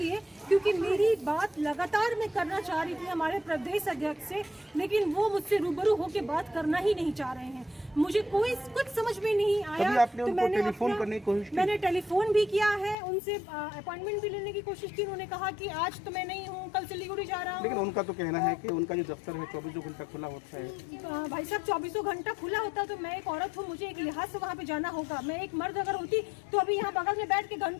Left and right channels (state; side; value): drops out; right; at 13.0 s